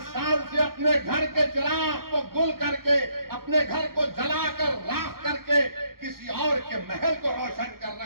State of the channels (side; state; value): left; late; 0.93 ms